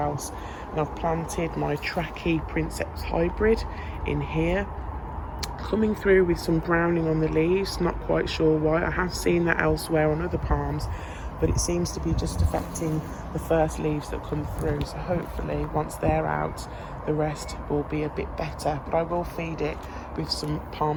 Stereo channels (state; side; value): identical; both; correlation 1.00